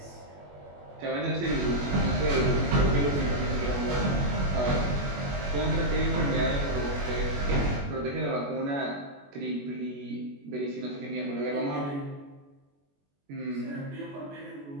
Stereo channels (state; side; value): late; left; 21 ms